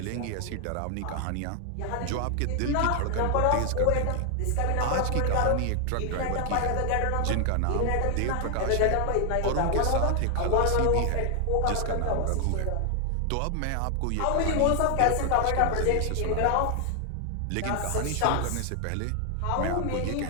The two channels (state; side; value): different; both; correlation 0.00